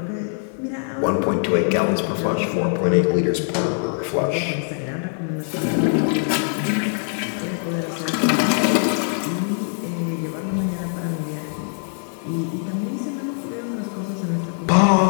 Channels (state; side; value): silent; right; 59 dB below the other